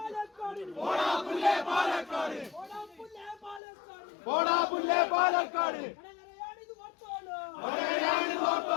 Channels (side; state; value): right; drops out; at 3.6 s